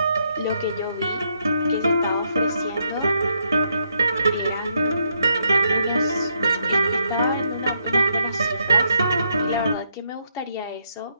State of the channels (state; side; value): inverted; both; correlation -0.76